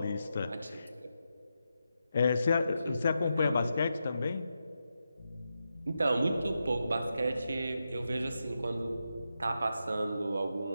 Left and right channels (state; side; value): inverted; both; correlation -0.87